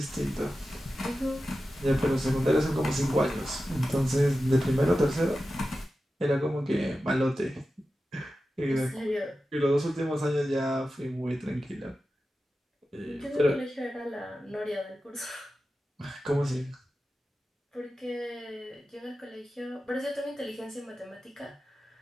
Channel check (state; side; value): normal; both; correlation 0.93